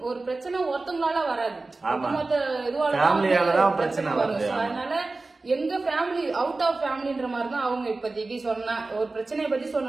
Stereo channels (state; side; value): quieter; left; 3.4 dB